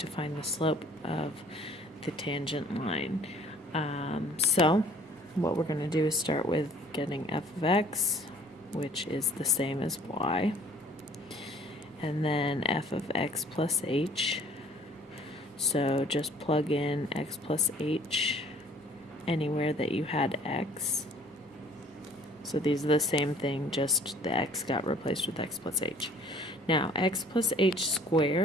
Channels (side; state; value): both; normal; correlation 0.54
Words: find the slope of the tangent line. So what we're going to do is start with getting f of x, which is the same as y, and then f of x plus h. So just plug in x plus h anywhere that you had x. So these are the same thing, just the x got replaced with x plus h. Now, x plus h